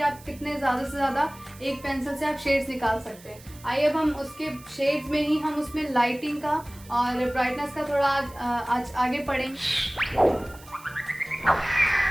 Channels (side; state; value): right; noise; hiss, 22 dB below the sound